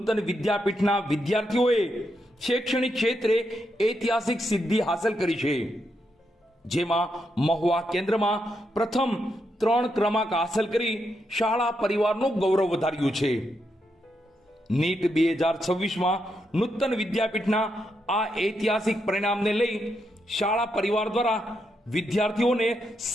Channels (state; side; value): normal; both; correlation 0.82